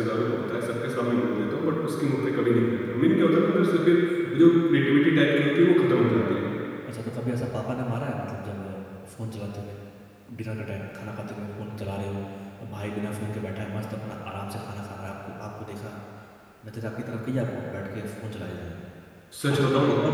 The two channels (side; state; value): both; identical; correlation 1.00